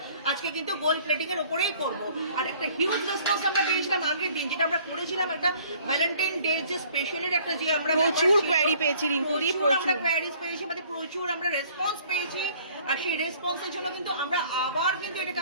আজকে কিন্তু গোল্ড প্লেটিং এর উপরেই করবো। আর একটা হিউজ রেসপন্স আমরা পেয়েছিলাম আগের দিন, যেটা আমরা করেছিলাম একটা ভ্যালেন্টাইন ডে যে স্পেশালের একটা, যে আমরা প্রচুর কোয়ারি পেয়েছি রিঙ্কুদি, আমরা কোয়ারিজ পেয়েছি, আমাদের প্রচুর আমরা রেসপন্স পেয়েছি। আর সেই রেসপন্সের জন্য কিন্তু আমরা আবার কিন্তু এটাকে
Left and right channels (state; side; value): inverted; both; correlation -0.55